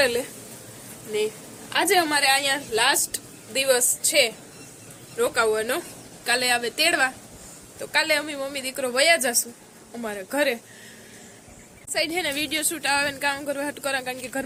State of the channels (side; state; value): both; identical; correlation 1.00